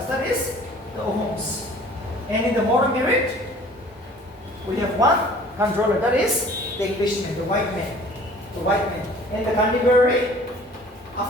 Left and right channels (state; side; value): normal; both; correlation 0.50